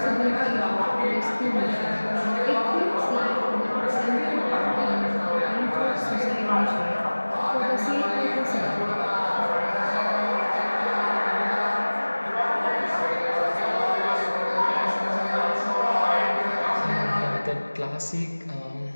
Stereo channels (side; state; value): both; inverted; correlation -1.00